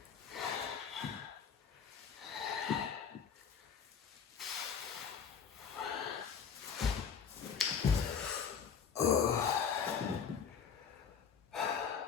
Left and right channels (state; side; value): quieter; right; 6.9 dB